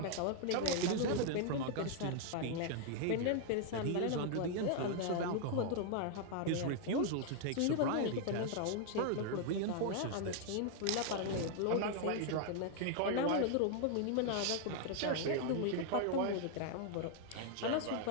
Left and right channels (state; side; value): different; both; correlation 0.00